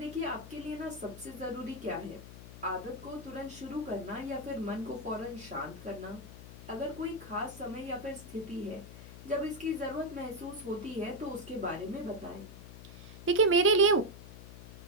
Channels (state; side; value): noise; left; hum, 14 dB below the sound